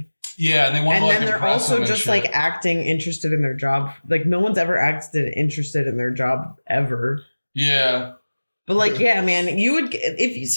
Yeah, and they want to like then they're also just like acting interested in their job. Like no one's ever acted interested in their job ever. Yeah. But like, yeah, man, you would if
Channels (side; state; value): both; inverted; correlation -1.00